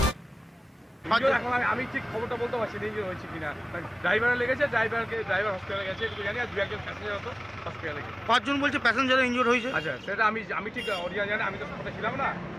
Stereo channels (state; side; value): normal; both; correlation 0.98